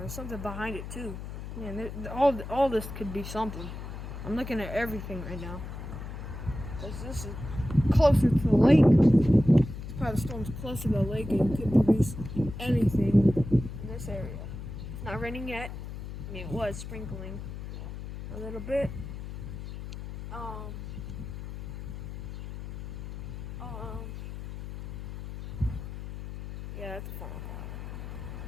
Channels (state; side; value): noise; left; hum, 9 dB below the sound